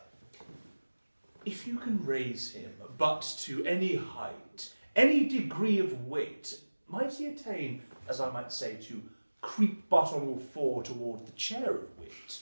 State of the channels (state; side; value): inverted; both; correlation -1.00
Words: if you can raise him but to any height, any degree of weight, might he attain, as I might say, to creep but on all four toward the chair of